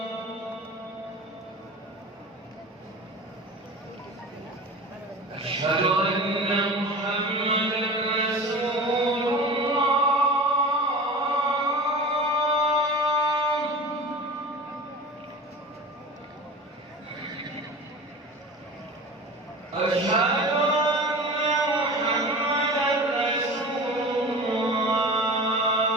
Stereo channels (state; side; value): normal; both; correlation 0.35